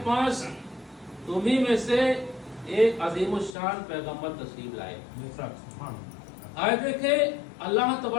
پاس تمہیں میں سے ایک عظیم الشان پیغمبر تشریف لائے۔ آئے دیکھیں اللہ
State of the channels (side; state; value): right; drops out; at 3.5 s